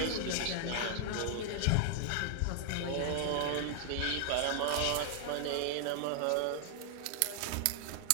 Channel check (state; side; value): different; both; correlation 0.00